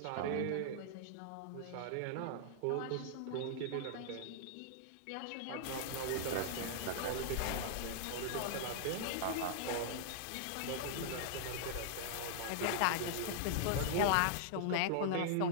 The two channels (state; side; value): different; both; correlation -0.01